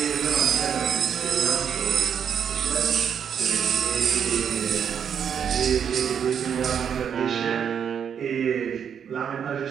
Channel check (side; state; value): left; quieter; 7.9 dB